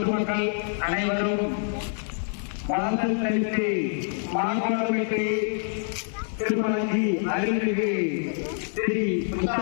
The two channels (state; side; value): silent; right; 61 dB below the other